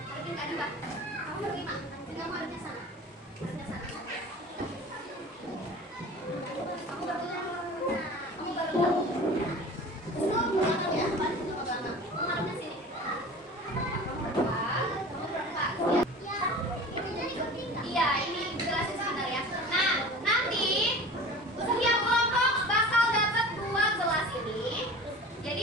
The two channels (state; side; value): normal; both; correlation 0.39